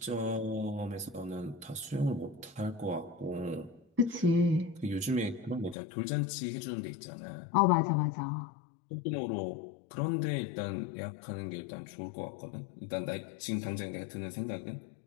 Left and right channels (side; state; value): right; drops out; at 5.8 s